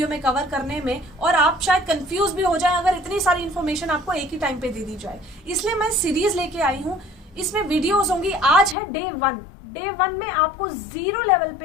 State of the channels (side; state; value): right; drops out; at 8.8 s